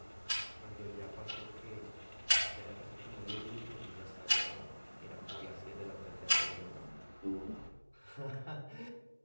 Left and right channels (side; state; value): both; inverted; correlation -1.00